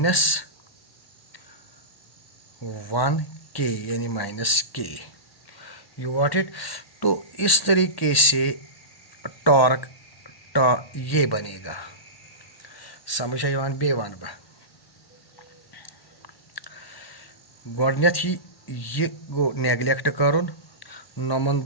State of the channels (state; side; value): late; right; 1.1 ms